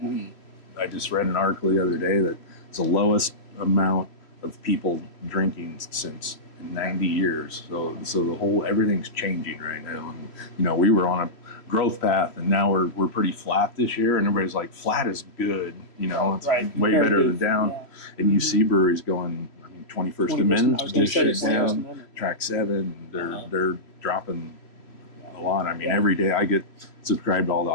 I just read an article the other day that it's the lowest amount of people drinking since 90 years. So the everything's changing right now. And we were on a growth path, and now we're pretty flat this year, and everybody's like, flat is good. It's way better than down. Yeah. And you see breweries going, 21st Amendment, I was gonna say shit 21st down. Amendment. Track 7, they're dropping a lot. I mean, every day I get subscribed to all the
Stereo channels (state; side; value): late; right; 3.0 ms